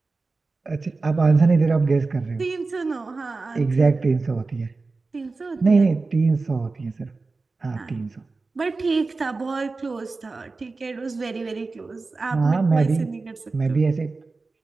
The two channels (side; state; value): left; quieter; 3.8 dB